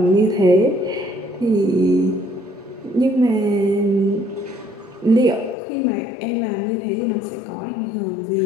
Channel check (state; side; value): drops out; right; at 5.6 s